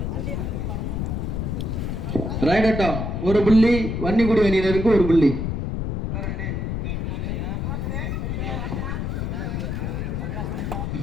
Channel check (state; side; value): noise; left; rumble, 2 dB below the sound